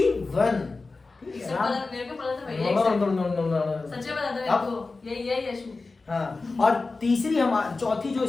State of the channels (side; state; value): right; quieter; 3.8 dB